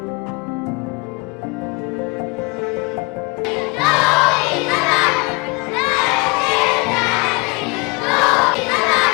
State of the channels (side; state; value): right; quieter; 28.2 dB